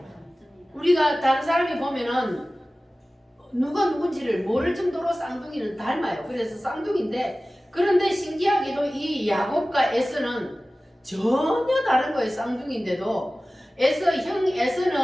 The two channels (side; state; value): both; normal; correlation 0.97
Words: 우리가 다른 사람이 보면은 누가 누군지를 모를 정도로 쌍둥이는 닮아요. 그래서 쌍둥이인데, 그런데 신기하게도 이 야곱과 에서는 전혀 다른 거예요. 쌍둥이인데도 형